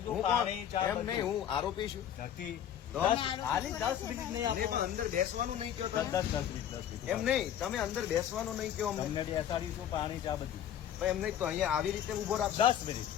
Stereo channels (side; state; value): right; quieter; 10.1 dB